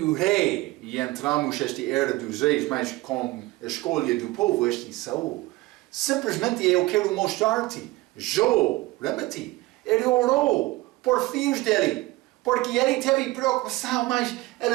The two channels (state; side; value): quieter; left; 20.0 dB